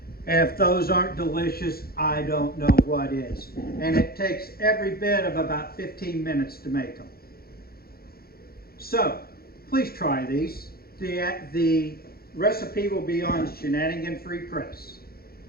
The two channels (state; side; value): late; right; 0.44 ms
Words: And if those aren't delicious, I don't know what is. And it takes every bit of about 15 minutes to make them. So, please try these. The recipe will be on Shenanigan Free Press.